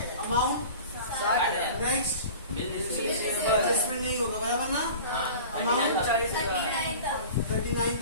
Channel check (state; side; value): inverted; both; correlation -0.39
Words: अमाउंट, नेक्स्ट एडजस्टमेंट नहीं होगा बराबर ना, अमाउंट